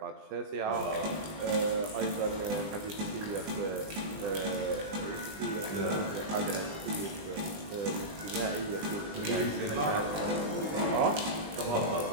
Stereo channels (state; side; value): late; left; 20 ms